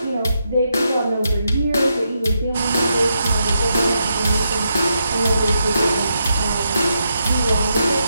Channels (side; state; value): both; inverted; correlation -0.81